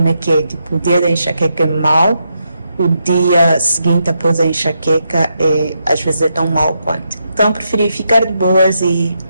é que é, tipo, o dia da enxaqueca é mau, o dia seguinte após a enxaqueca às vezes é tão mau quanto. Então preferi ficar de boas e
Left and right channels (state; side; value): inverted; both; correlation -0.82